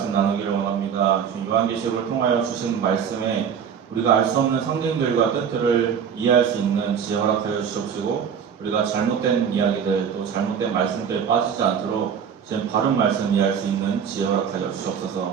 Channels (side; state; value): left; quieter; 7.5 dB